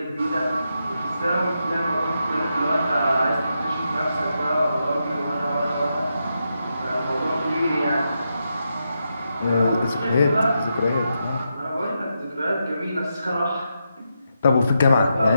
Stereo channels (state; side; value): inverted; both; correlation -0.84